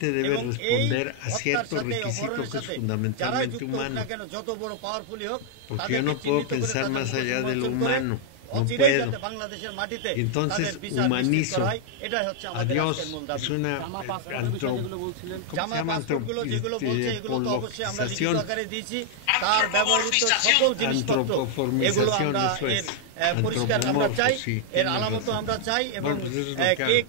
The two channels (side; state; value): both; different; correlation -0.01